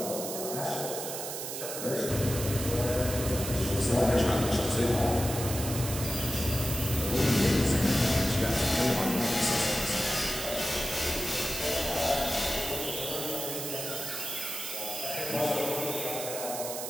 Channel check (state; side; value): noise; right; hiss, 6 dB below the sound